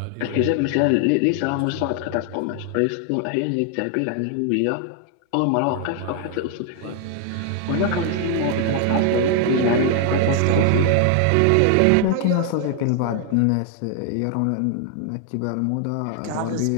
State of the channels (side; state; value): both; different; correlation 0.00